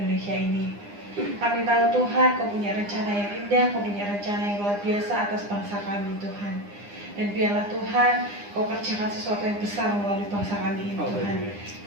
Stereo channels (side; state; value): left; late; 9.8 ms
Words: ini. Kami tahu Tuhan, Kau punya rencana yang indah, Kau punya rencana yang luar biasa atas bangsa kami Tuhan. Dan biarlah Tuhan, Kau kerjakan sesuatu yang besar melalui bangsa kami ini Tuhan.